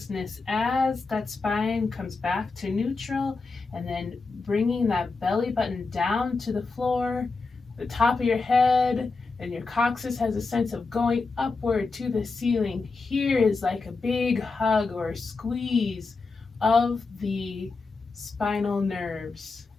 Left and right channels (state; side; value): quieter; right; 4.1 dB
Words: as that spine comes back to neutral, and then bringing that belly button down to the floor, the top of your head, and your coccyx has a sense of going upward to the ceiling. Here is like a big hug or squeeze of the spinal nerves.